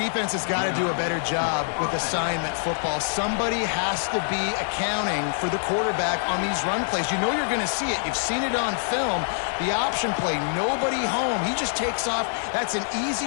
has got to do a better job with assignment football. Somebody has to be accounting for the quarterback on these run plays. You know you're going to see it. You've seen it on film. The option play, nobody home. He just takes off. That's an easy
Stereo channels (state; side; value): silent; right; digital silence